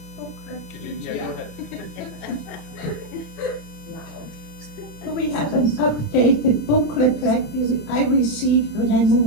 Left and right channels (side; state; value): right; late; 27 ms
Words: booklet? Do we have an updated booklet like I received when I